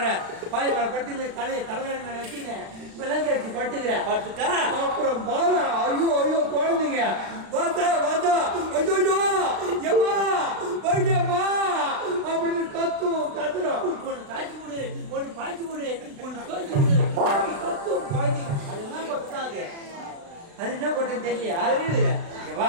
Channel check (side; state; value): left; late; 36 ms